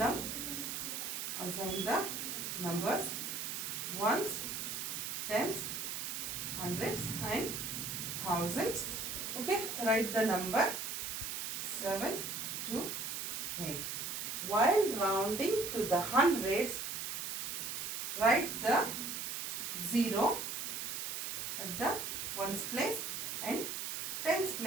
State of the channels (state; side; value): noise; right; hiss, 3 dB below the sound